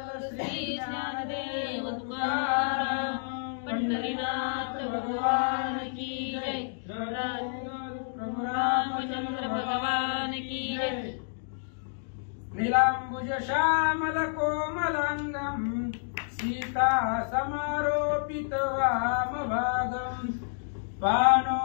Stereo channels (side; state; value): right; silent; digital silence